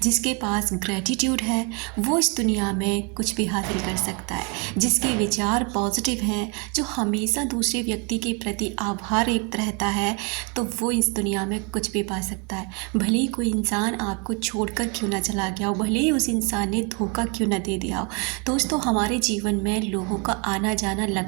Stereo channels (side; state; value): left; quieter; 33.5 dB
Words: जिसके पास ग्रैटिट्यूड है, वो इस दुनिया में कुछ भी हासिल कर सकता है। जिसके विचार पॉजिटिव हैं, जो हमेशा दूसरे व्यक्ति के प्रति आभार व्यक्त रहता है, तो वो इस दुनिया में कुछ भी पा सकता है। भले ही कोई इंसान आपको छोड़कर क्यों ना चला गया हो, भले ही उस इंसान ने धोखा क्यों ना दे दिया हो। दोस्तों, हमारे जीवन में लोगों का आना जाना